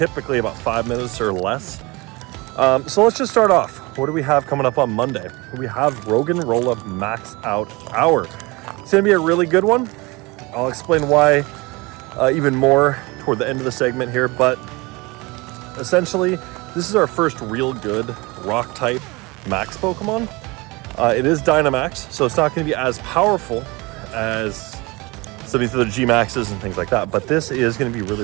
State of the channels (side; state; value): left; quieter; 24.5 dB